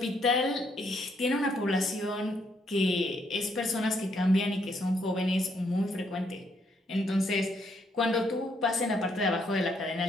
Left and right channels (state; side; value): normal; both; correlation 0.73